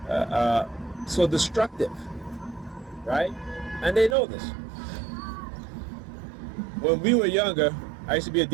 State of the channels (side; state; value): left; drops out; at 4.2 s